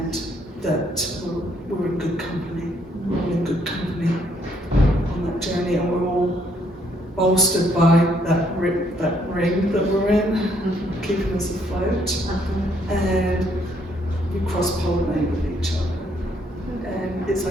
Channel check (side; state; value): both; normal; correlation 0.69